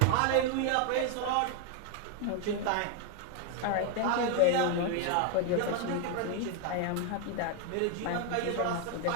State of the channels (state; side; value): different; both; correlation 0.01